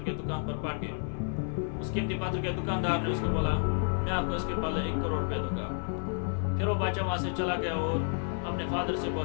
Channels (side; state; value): right; silent; 57 dB below the other